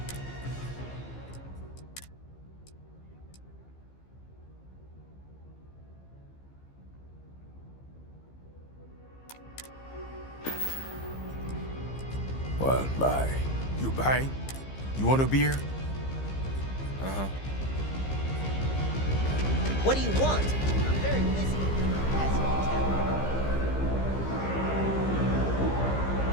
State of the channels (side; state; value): right; late; 15 ms